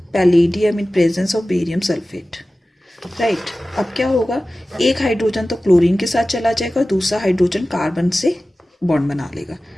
palladium in presence of barium sulphate, right. अब क्या होगा, एक हाइड्रोजन तो क्लोरीन के साथ चला जाएगा, दूसरा हाइड्रोजन कार्बन से बॉन्ड बना लेगा,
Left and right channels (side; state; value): both; normal; correlation 0.96